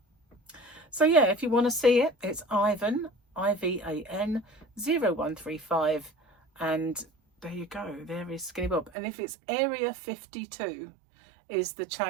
So yeah, if you want to see it, it's Ivan, IVAN 0135, and there you go. There is Skinny Bob. And if it's Area 52 is the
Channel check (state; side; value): drops out; left; at 8.9 s